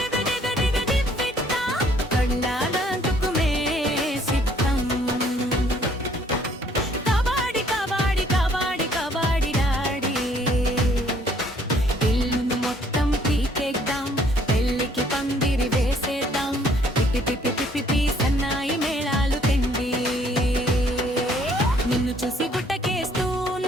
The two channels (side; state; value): both; normal; correlation 0.62